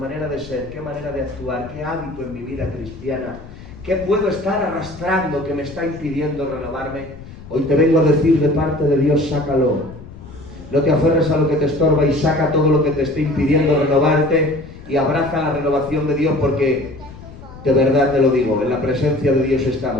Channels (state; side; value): noise; left; rumble, 16 dB below the sound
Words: de ser, qué manera de actuar, qué hábito en mi vida cristiana, qué puedo estar arrastrando que me está impidiendo renovarme? Hoy te vengo a decir de parte de Dios, sácalo. No te aferres a lo que te estorba y saca todo lo que te esté impidiendo renovarte y abraza la renovación de Dios, porque de verdad te lo digo, en la presencia de Dios